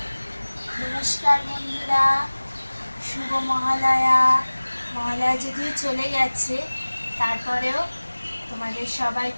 নমস্কার বন্ধুরা, শুভ মহালয়া। মহালয়া যদিও চলে গেছে, তারপরেও তোমাদের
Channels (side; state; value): both; inverted; correlation -1.00